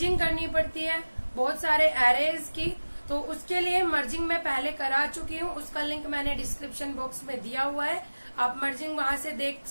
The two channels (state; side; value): inverted; both; correlation -1.00